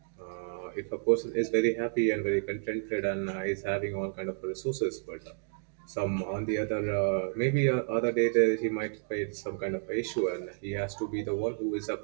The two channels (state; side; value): silent; left; digital silence